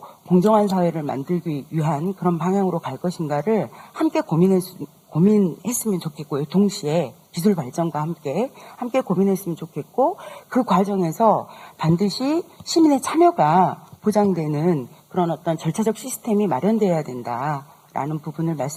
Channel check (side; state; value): both; identical; correlation 1.00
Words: 공정한 사회를 만들기 위한 그런 방향으로 갈 것인가를 함께 고민했으면 좋겠고요. 동시에 기술 발전과 함께 고민했으면 좋겠고 그 과정에서 반드시 시민의 참여가 보장되는 그런 어떤 절차적 시스템이 마련되어야 된다라는 부분을